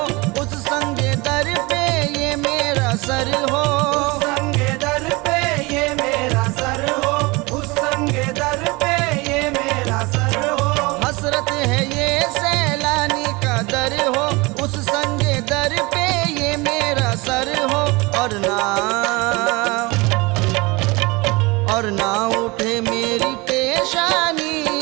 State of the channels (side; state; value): left; quieter; 24.7 dB